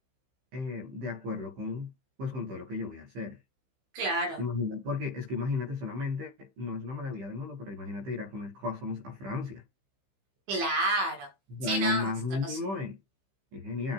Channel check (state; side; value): late; left; 15 ms